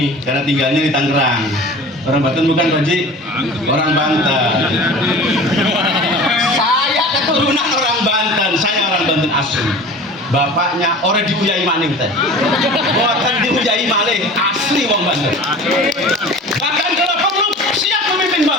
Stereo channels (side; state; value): both; normal; correlation 0.39